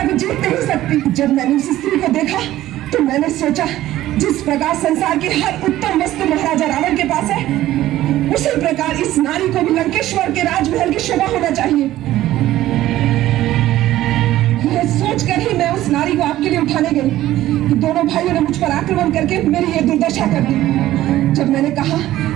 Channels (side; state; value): left; quieter; 14.6 dB